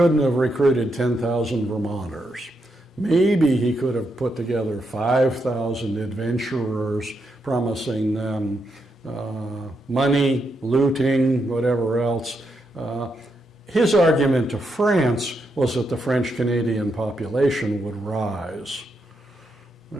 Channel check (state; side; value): normal; both; correlation 0.82